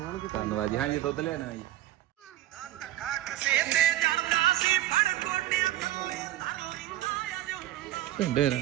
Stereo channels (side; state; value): left; quieter; 14.1 dB